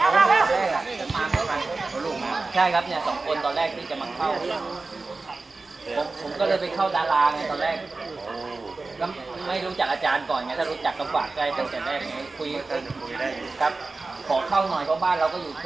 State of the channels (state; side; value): quieter; left; 3.7 dB